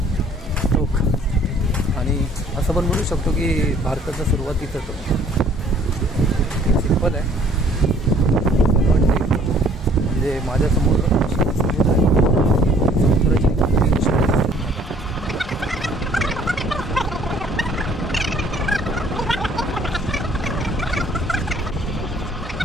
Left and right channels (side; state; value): both; normal; correlation 0.58